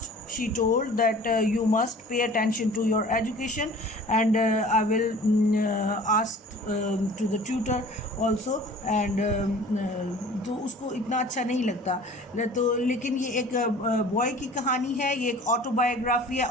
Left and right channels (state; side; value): normal; both; correlation 0.46